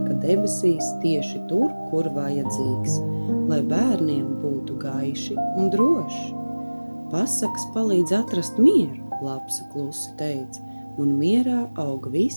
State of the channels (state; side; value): inverted; both; correlation -1.00